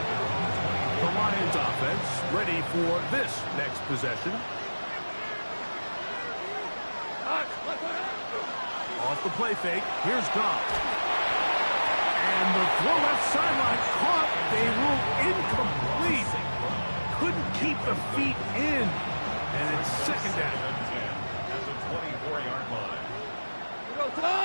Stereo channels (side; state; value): both; inverted; correlation -1.00